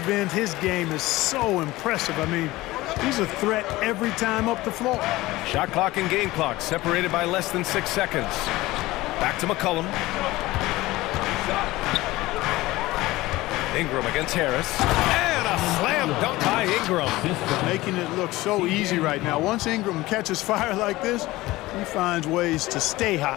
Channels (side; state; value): right; quieter; 18.7 dB